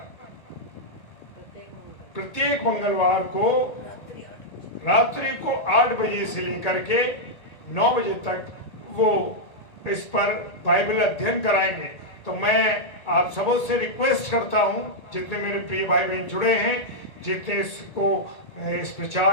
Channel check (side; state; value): right; late; 1.8 ms